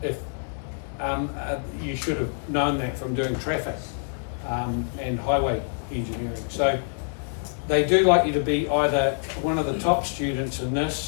if you should have known that from doing traffic and highway engineering. So they do like you to be either one of the top students in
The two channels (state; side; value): silent; right; digital silence